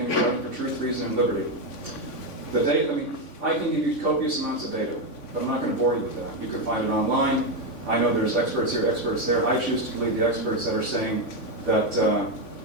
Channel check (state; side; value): late; right; 3.5 ms